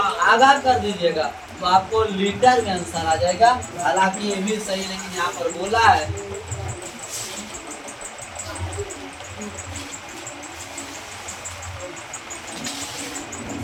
आगा कर दीजिएगा, तो आपको लीटर में आंसर आ जाएगा। हालांकि ये भी सही, लेकिन यहाँ पर बोला है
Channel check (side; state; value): both; identical; correlation 1.00